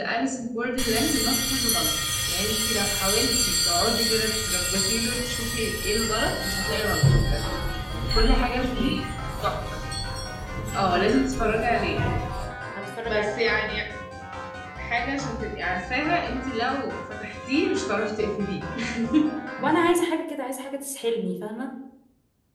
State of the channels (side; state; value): both; identical; correlation 1.00